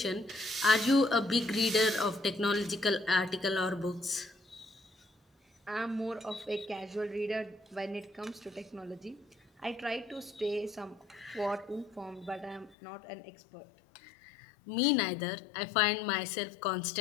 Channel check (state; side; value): drops out; right; at 12.8 s